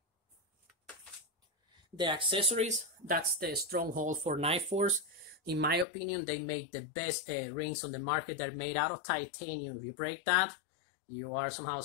The accessories, that's the stronghold for NightForce. In my opinion, they make the best rings on the market. They're made out of titanium. If you break that, you are somehow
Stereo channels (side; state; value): right; drops out; at 5.9 s